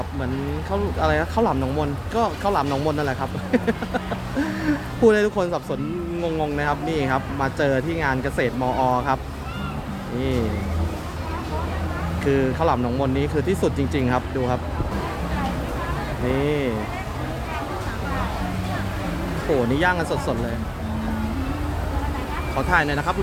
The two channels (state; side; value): identical; both; correlation 1.00